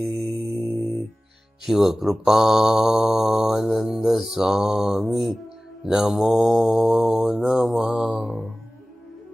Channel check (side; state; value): both; normal; correlation 0.97